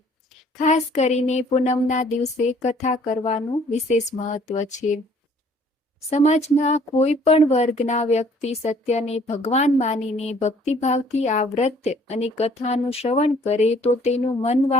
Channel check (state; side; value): normal; both; correlation 0.58